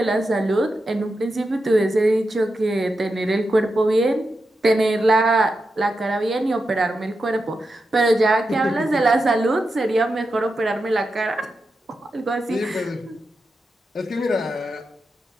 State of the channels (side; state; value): both; normal; correlation 0.88